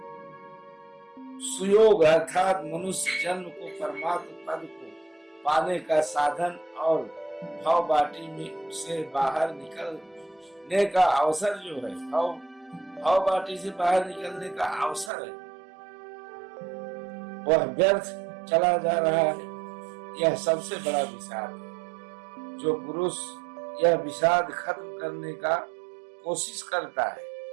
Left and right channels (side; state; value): left; drops out; at 15.1 s